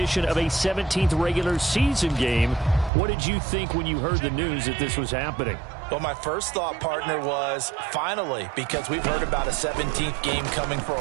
of a 17th regular season game. What did you think when you heard the news that this was happening? Well, my first thought, partner, was finally, because we've heard about a 17th game coming for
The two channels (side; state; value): left; drops out; at 2.9 s